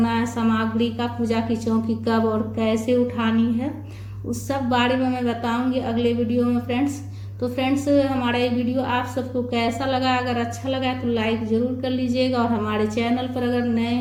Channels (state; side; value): identical; both; correlation 1.00